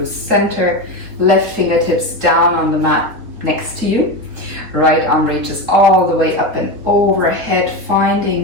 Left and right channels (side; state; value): left; late; 3.7 ms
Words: center, left fingertips down on the mat next to you. Right arm reaches all the way up and overhead,